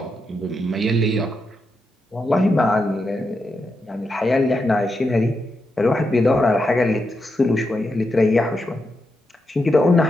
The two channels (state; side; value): normal; both; correlation 0.85